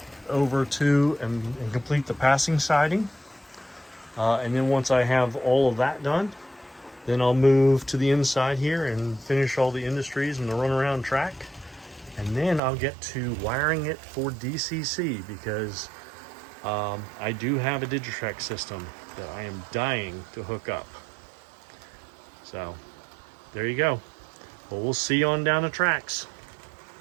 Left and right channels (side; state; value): left; drops out; at 12.6 s